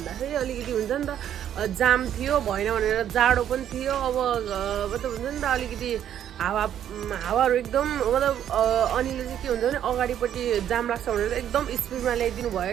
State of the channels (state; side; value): quieter; left; 10.2 dB